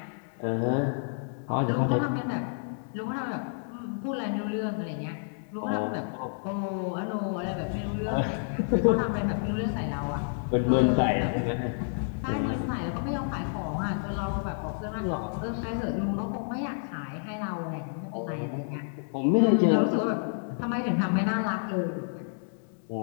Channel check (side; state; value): right; silent; digital silence